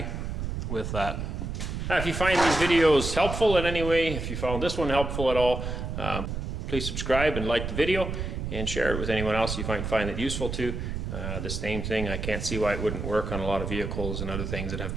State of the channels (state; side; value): noise; right; rumble, 4 dB below the sound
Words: with that. Now, if you find these videos helpful in any way, if you found this one helpful at all, please subscribe and like the video and share it with anyone else you find it useful to. The same thing, I can't see why it wouldn't work on a lot of vehicles and other things that have